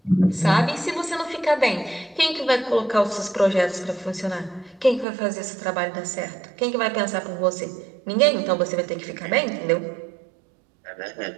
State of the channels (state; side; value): drops out; left; at 5.1 s